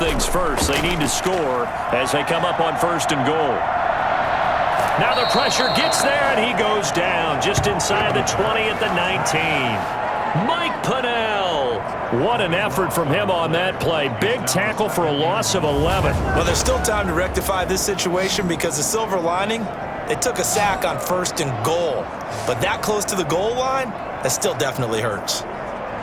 first, they need to score as they come up on 1st and goal. Now the pressure gets there, and he goes down just inside the 20 at the 19. Mike Pennell. What an effort from him on that play. Big tackle for a loss of 11. Well, there's still time to rectify this situation because the silver lining, they took a sack on 1st and goal. But that close to the goal line, that still definitely hurts.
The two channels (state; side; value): identical; both; correlation 1.00